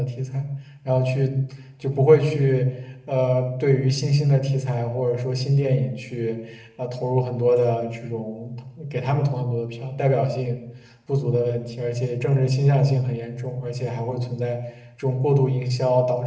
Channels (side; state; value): both; identical; correlation 1.00